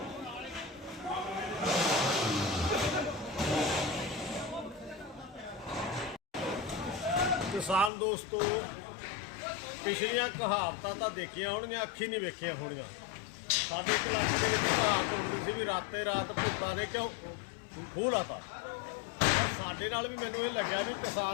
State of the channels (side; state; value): right; drops out; at 7.9 s